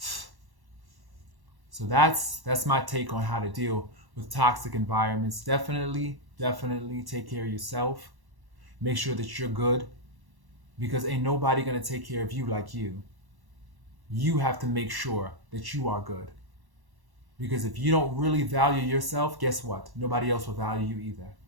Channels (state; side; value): late; left; 1.1 ms